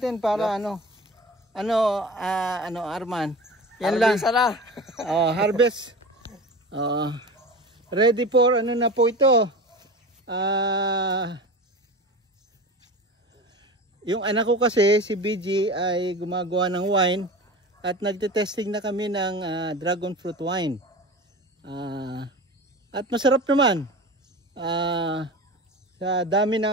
para Arman. Yan lang. Sana. Harvest. Ready for ano na po ito. Yung anak ko kasi si BG ay gumagawa ng wine at nagte-testing na kami ng dragon fruit wine. At masarap naman. Sa dami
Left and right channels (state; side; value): normal; both; correlation 0.32